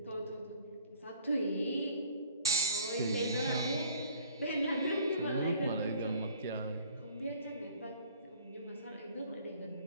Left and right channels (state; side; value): inverted; both; correlation -0.51